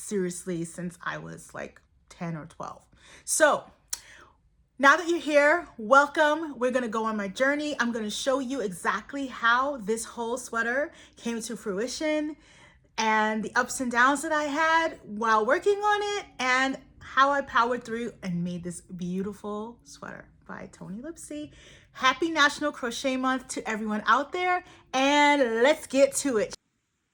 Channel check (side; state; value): both; identical; correlation 1.00